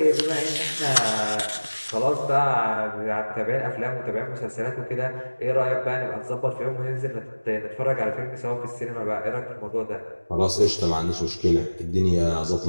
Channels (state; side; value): inverted; both; correlation -1.00